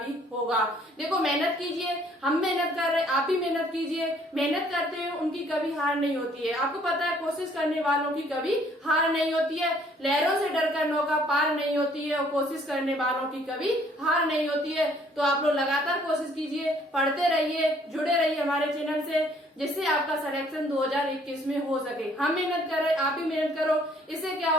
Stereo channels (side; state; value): both; normal; correlation 0.61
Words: होगा। देखो मेहनत कीजिए, हम मेहनत कर रहे हैं, आप भी मेहनत कीजिए। मेहनत करते हैं उनकी कभी हार नहीं होती है। आपको पता है कोशिश करने वालों की कभी हार नहीं होती है। लहरों से डरकर नौका पार नहीं होती है, और कोशिश करने वालों की कभी हार नहीं होती है। तो आप लोग लगातार कोशिश कीजिए, पढ़ते रहिए, जुड़े रहिए हमारे चैनल से, जिससे आपका सिलेक्शन 2021 में हो सके। हम मेहनत कर रहे हैं, आप भी मेहनत करो। इससे क्या